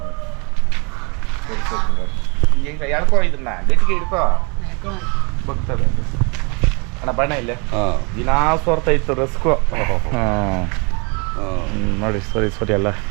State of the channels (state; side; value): quieter; left; 31.8 dB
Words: ಈಗ ಎಳ್ಕೊ, ಇದನ್ನ ಗಟ್ಟಿಗೆ ಹಿಡ್ಕೊ, ಬಗ್ತದೆ ಅಣ್ಣ. ಬಣ್ಣ ಇಲ್ಲೇ ದಿನಾ ಸೋರ್ತಾ ಇತ್ತು ರಸ್ಕು. ನೋಡಿ ಸರಿ ಅಲ್ಲ.